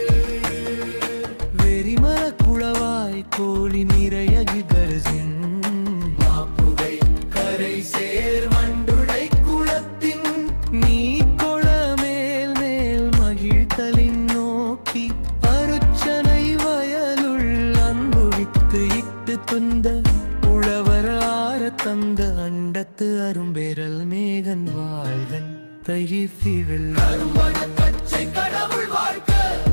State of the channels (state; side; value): inverted; both; correlation -1.00